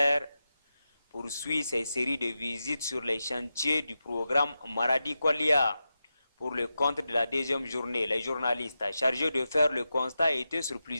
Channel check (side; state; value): both; inverted; correlation -0.91